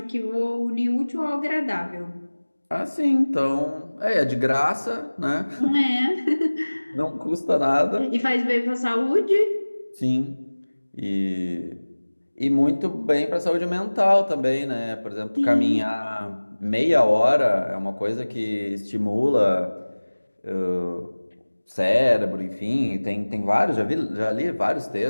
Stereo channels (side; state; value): both; inverted; correlation -1.00